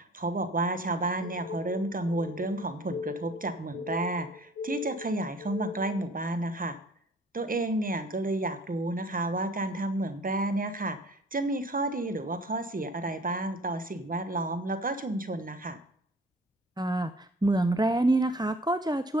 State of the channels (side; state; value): both; normal; correlation 0.50